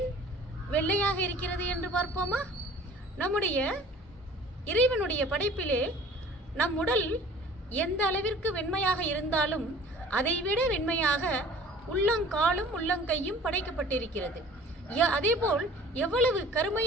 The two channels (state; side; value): normal; both; correlation 0.48